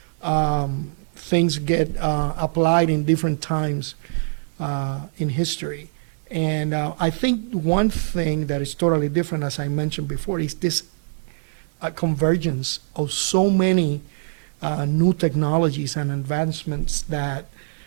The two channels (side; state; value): left; silent; digital silence